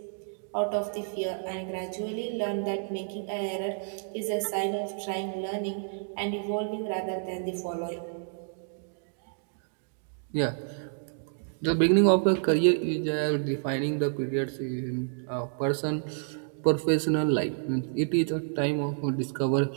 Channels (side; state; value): left; silent; digital silence